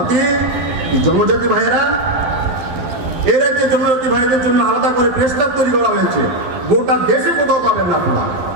এই জনজাতি ভাইয়েরা, এর যে জনজাতি ভাইদের জন্য আলাদা করে প্রেস ক্লাব তৈরি করা হয়েছে, গোটা দেশে কোথাও পাবেন না আপনারা।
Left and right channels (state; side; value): late; left; 12 ms